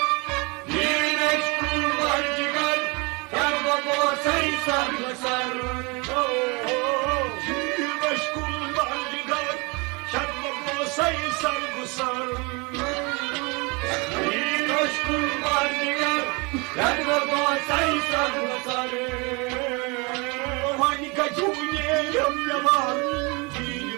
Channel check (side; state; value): left; quieter; 28.8 dB